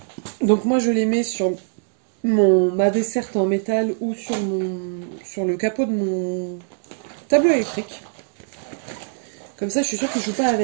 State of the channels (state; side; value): silent; left; digital silence